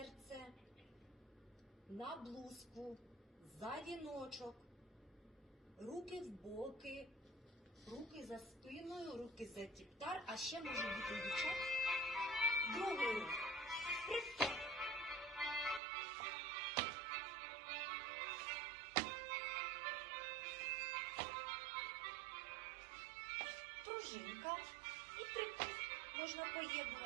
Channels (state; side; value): drops out; left; at 15.8 s